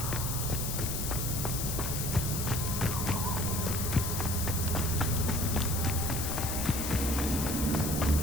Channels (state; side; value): noise; left; hiss, 3 dB below the sound